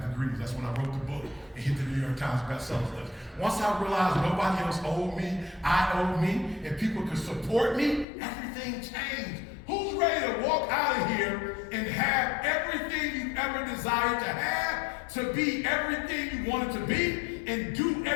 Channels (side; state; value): right; drops out; at 8.1 s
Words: degrees. That's when I wrote the book and hit the New York Times bestsellers list. Once I realized nobody else owed me, I owed me, and people could support me, everything changed. Who's ready to walk out of here and have everything you ever desired to have, to be everything you wanted to be, and do